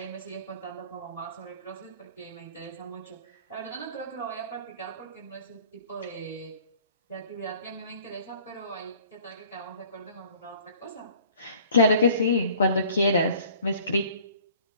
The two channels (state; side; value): inverted; both; correlation -0.51